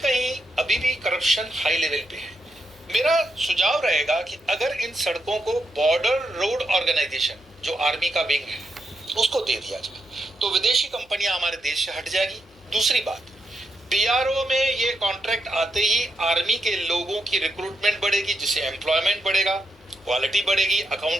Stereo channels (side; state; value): left; noise; hum, 29 dB below the sound